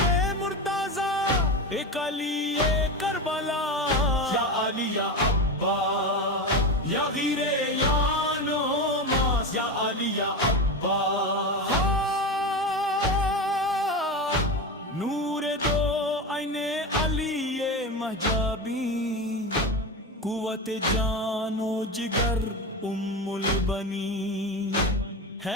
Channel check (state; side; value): normal; both; correlation 0.21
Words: मुर्ताजा एक अली ये करबला या अली या अब्बास या गिरे या नोमास या अली या अब्बास नूर दो आईने अली ये महजाबी कुव्वत जानो जिगर उम्मुल बनी